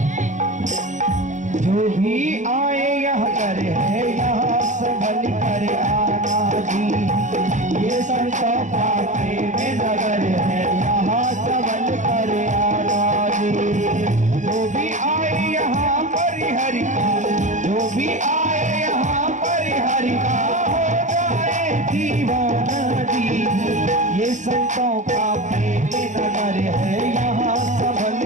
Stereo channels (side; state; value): left; late; 0.35 ms